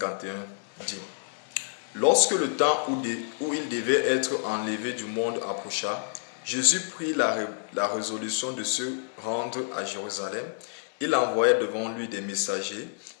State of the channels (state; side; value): silent; right; digital silence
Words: dit: Lorsque le temps où il devait être enlevé du monde approcha, Jésus prit la résolution de se rendre à Jérusalem. Il envoya devant lui des messagers